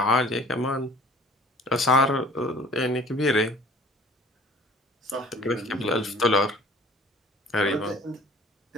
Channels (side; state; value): both; normal; correlation 0.49